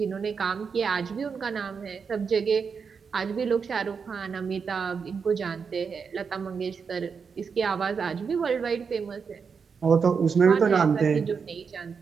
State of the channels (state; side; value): quieter; left; 5.8 dB